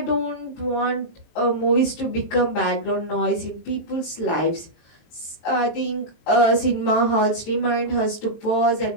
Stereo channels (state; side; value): late; right; 22 ms